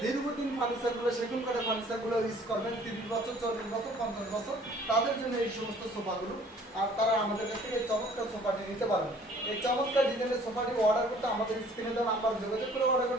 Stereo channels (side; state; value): both; normal; correlation 0.55